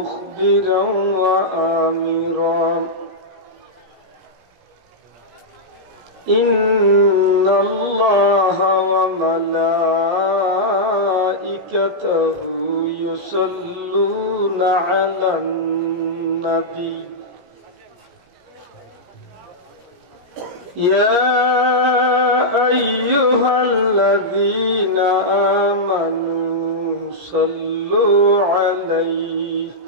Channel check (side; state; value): left; late; 17 ms